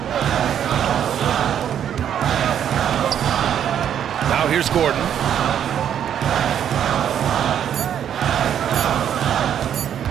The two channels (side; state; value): left; quieter; 9.4 dB